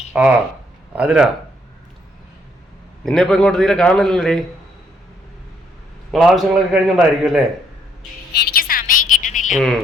ആ അതിനാ നിന്നെ ഇപ്പൊ ഇങ്ങോട്ട് തീരെ കാണുന്നില്ലല്ലേ? നിങ്ങൾ ആവശ്യങ്ങളൊക്കെ കഴിഞ്ഞോണ്ടായിരിക്കും അല്ലേ? എനിക്ക് സമയം കിട്ടണില്ല.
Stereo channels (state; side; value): normal; both; correlation 0.70